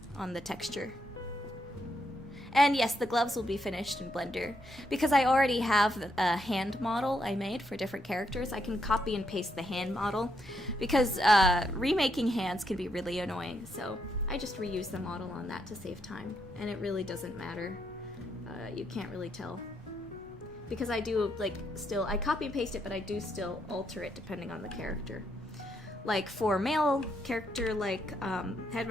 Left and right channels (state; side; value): normal; both; correlation 0.78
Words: on the texture. And yes, the gloves will be finished in Blender. Because I already have a hand model I made for different characters, I can copy and paste the hand model. Because remaking hands can be really annoying, so I just reuse the model on that to save time. And it really doesn't matter. You can't really tell. Because I do, like, still, I copy and paste it, but I do still alter it depending on the character. Like, for male character, like,